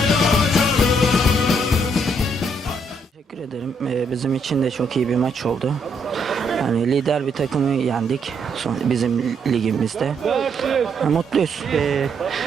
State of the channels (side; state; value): both; normal; correlation 0.73